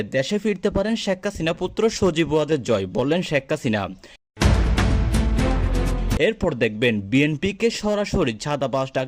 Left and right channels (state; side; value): identical; both; correlation 1.00